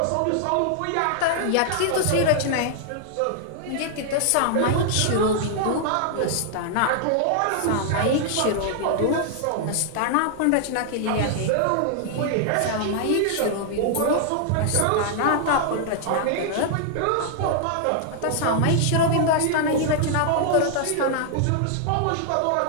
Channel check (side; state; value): both; different; correlation 0.00